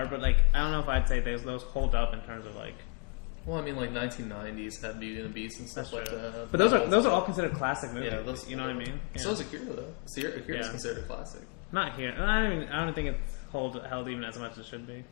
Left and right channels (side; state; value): right; quieter; 32.4 dB